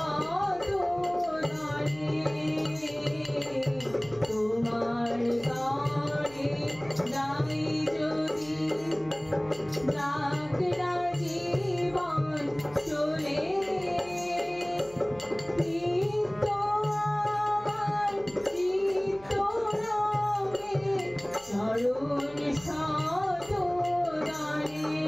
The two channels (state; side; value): noise; right; hum, 23 dB below the sound